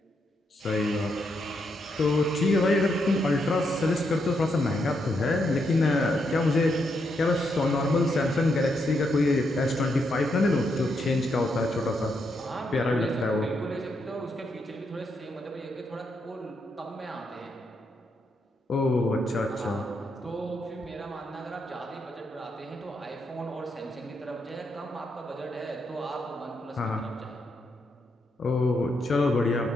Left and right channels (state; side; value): normal; both; correlation 0.80